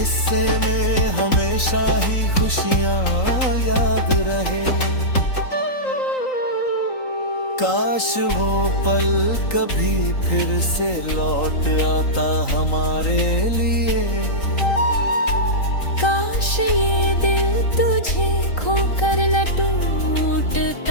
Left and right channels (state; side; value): late; right; 3.8 ms